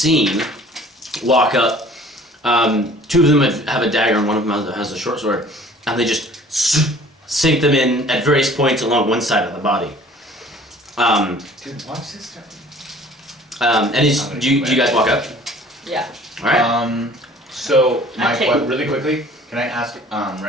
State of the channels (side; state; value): both; normal; correlation 0.50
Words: walk up. 2 of them have a dagger and one of them has a short sword, and they just sink them in at various points along one side of the body. Dude, watch this stuff. And do you guys walk up? Yeah. All right. So my Okay. really quickly, can I ask